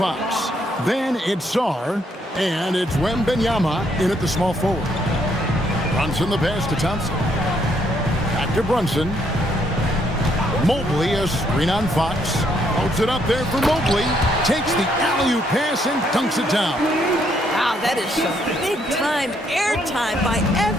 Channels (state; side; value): normal; both; correlation 0.71